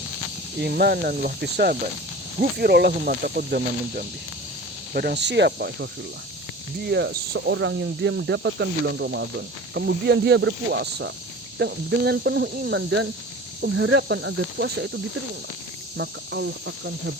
imanan wa ihtisaban, ghufira lahu ma taqaddama min dzambi." Barang siapa ikhwafillah, dia seorang yang dia mendapatkan bulan Ramadan, kemudian dia berpuasa dengan penuh iman dan pengharapan agar puasa itu diterima, maka Allah akan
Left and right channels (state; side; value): normal; both; correlation 0.38